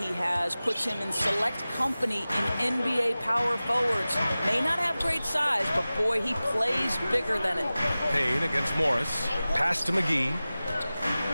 has puts him in select company in NBA power forwards. May not have great size, but boy, he plays bigger than it. Payne against Morris. Pass to McGee.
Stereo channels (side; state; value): both; inverted; correlation -0.97